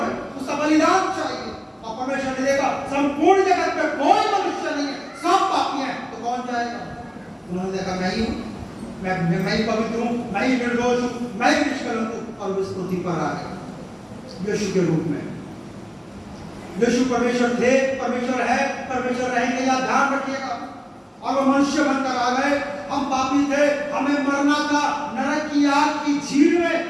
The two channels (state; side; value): identical; both; correlation 1.00